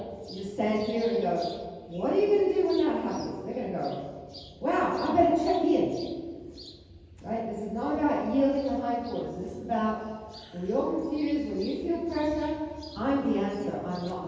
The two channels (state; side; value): identical; both; correlation 1.00